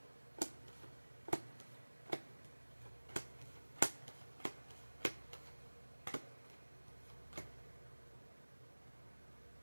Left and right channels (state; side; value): inverted; both; correlation -1.00